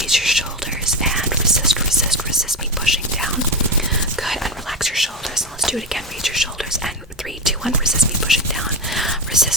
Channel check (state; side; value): normal; both; correlation 0.17